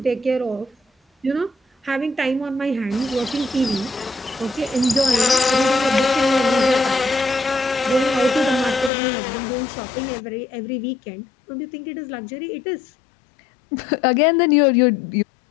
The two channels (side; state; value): right; drops out; at 8.9 s